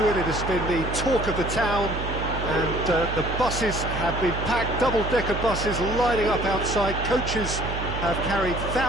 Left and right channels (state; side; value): noise; right; hum, 5 dB below the sound